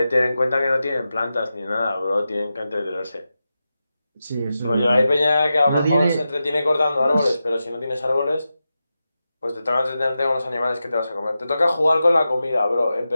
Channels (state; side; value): inverted; both; correlation -0.91